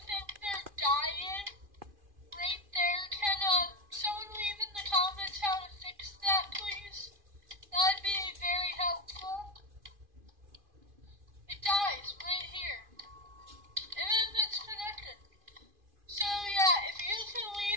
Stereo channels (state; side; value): late; left; 2.5 ms